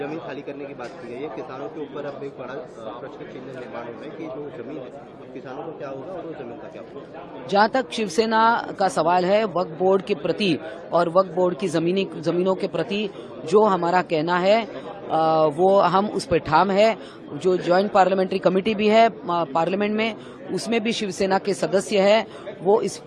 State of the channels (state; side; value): identical; both; correlation 1.00